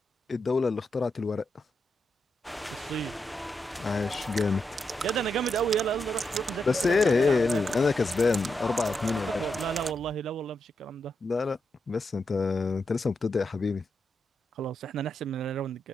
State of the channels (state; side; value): normal; both; correlation 0.84